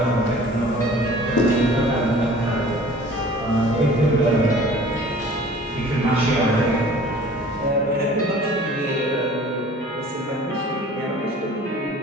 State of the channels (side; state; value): both; normal; correlation 0.47